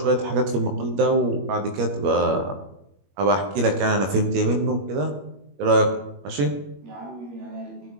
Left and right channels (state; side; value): late; left; 21 ms